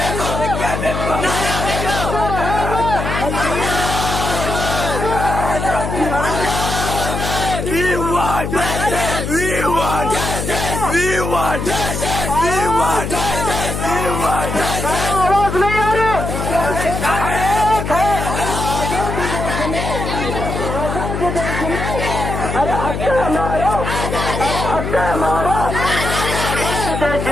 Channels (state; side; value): noise; left; hum, 4 dB below the sound